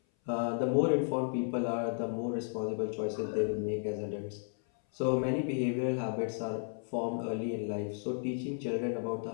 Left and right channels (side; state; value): right; silent; 55 dB below the other